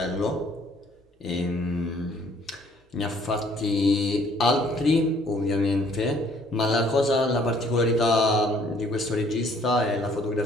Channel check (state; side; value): normal; both; correlation 0.61